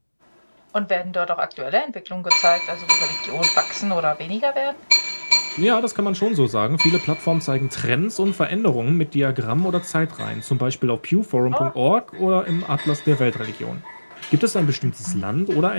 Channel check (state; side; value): inverted; both; correlation -1.00